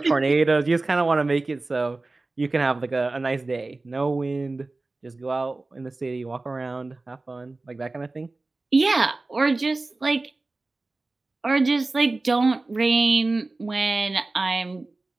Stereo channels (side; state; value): left; quieter; 3.3 dB